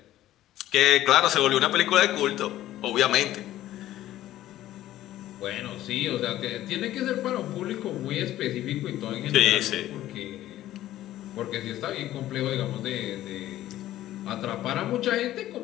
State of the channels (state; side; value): quieter; right; 14.0 dB